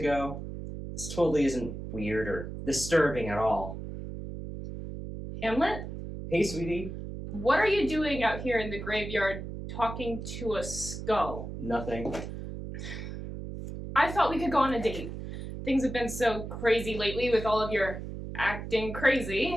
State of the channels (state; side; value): noise; right; hum, 8 dB below the sound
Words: This totally isn't weird or disturbing at all. Hamlet, Hey, sweetie. what are you doing out here in the graveyard talking to a skull? Nothing. I thought we could go on a date. Things have been so crazy lately with all of your acting